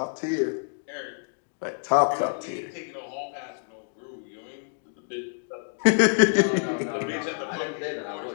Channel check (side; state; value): right; silent; digital silence